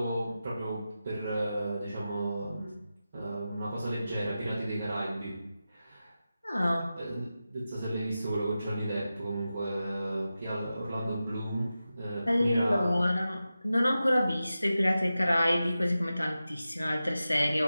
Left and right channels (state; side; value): inverted; both; correlation -0.93